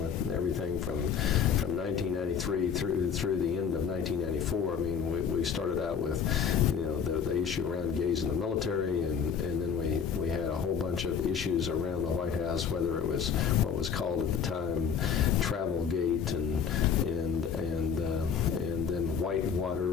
everything from 1993 through the end of 1994. I mean, we started out with the issue around gays in the military, and then we had a whole bunch of issues around the White House, whether it was what was called at the time Travelgate and then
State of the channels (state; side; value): quieter; right; 7.0 dB